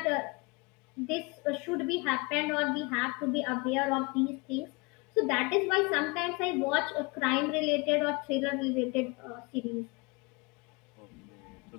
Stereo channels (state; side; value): quieter; right; 27.9 dB